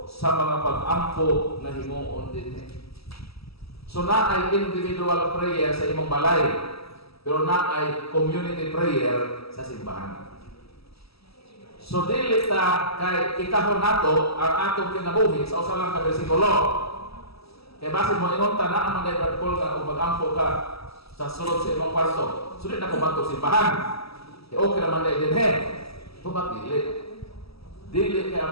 sa mga pag-ampo na himuon dinhi. So na ay individual prayer sa imong balay, pero na ay community prayer sa simbahan. So dili ta kay ikahon nato ang atong kinabuhi sa usa lang ka bersikulo. Kay base mo ingon ta na ang mga protocol nga ug mag-ampo ka sa sulod sa imong kwarto. Sudit na ko batok simbahan. Okay naman na din Tubag dili. Dili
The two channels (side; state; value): right; late; 0.76 ms